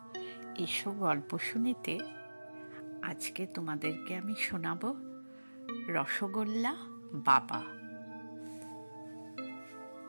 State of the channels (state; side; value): inverted; both; correlation -1.00